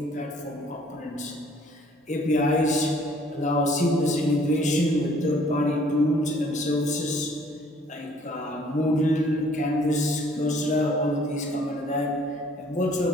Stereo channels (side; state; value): both; normal; correlation 0.59